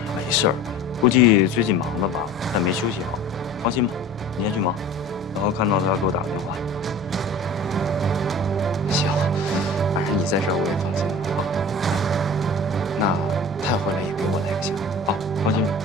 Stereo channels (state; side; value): noise; right; hum, 22 dB below the sound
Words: 没事儿，估计最近忙的吧，但没休息好。放心吧，你先去忙，然后看到他给我打个电话。行，反正你在这儿我也放心了。好，那他回来也给我来个信。好，放心吧。